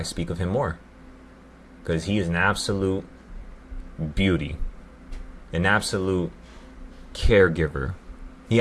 speak of him more. Because he is an absolute beauty. An absolute caregiver. He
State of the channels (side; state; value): both; identical; correlation 1.00